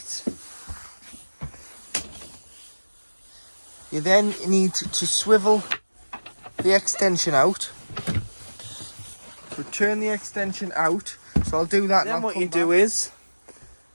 you then need to swivel the extension out. So turn the extension out. So I'll do that. Then what you do is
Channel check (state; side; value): inverted; both; correlation -1.00